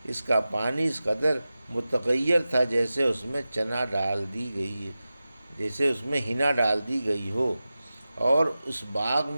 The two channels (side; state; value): both; inverted; correlation -0.95